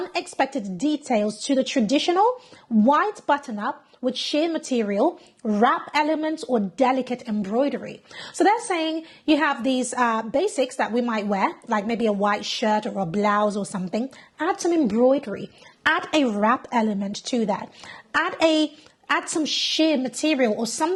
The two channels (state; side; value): identical; both; correlation 1.00